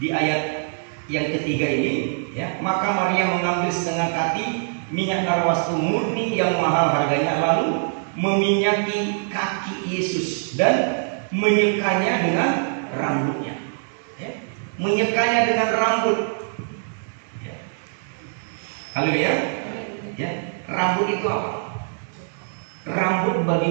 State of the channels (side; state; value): left; silent; digital silence